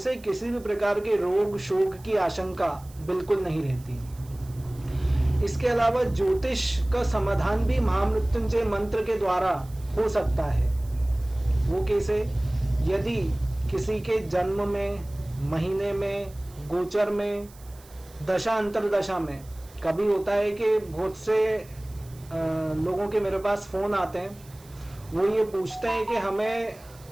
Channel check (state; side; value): noise; right; hiss, 24 dB below the sound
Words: किसी भी प्रकार के रोग शोक की आशंका बिल्कुल नहीं रहती। इसके अलावा ज्योतिष का समाधान भी महामृत्युंजय मंत्र के द्वारा हो सकता है। वो कैसे? यदि किसी के जन्म में, महीने में, गोचर में, दशा अंतरदशा में, कभी होता है कि बहुत से लोगों के मेरे पास फोन आते हैं, वो ये पूछते हैं कि हमें